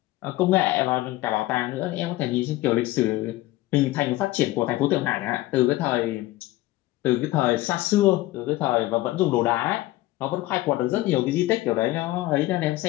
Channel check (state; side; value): quieter; right; 17.5 dB